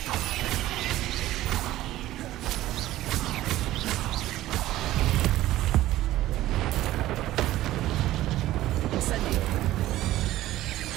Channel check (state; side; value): quieter; left; 15.2 dB